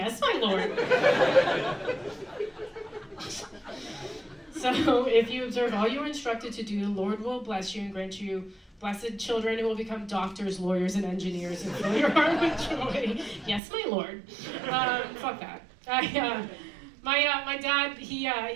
my Lord. So if you observe all you are instructed to do, the Lord will bless you and grant you blessed children who will become doctors, lawyers, and engineers and fill your heart with joy. Yes, my Lord. Fuck that. My dad,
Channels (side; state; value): left; drops out; at 13.6 s